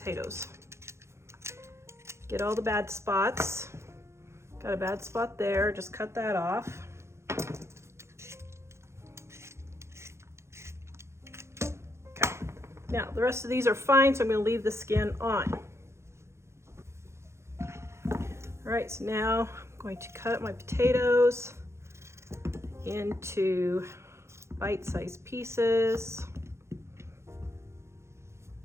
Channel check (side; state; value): left; late; 0.13 ms